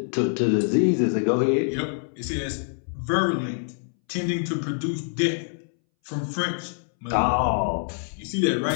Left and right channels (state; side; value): silent; right; 62 dB below the other